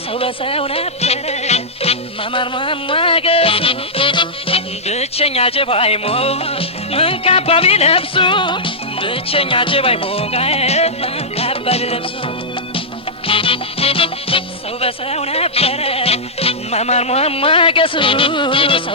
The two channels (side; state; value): both; normal; correlation -0.10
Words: ሰው በሰው ነበረ ማማር ማሟገሱ ብቸኛ ጀባይ ሞ ምን ካባ ቢለብሱ ብቸኛ ጀባይ ሞ ምን ካባ ቢለብሱ ሰው በሰው ነበረ ማማር ማሟገሱ